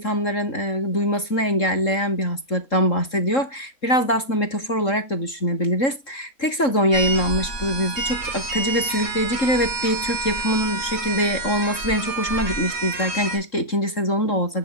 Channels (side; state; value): right; late; 3.7 ms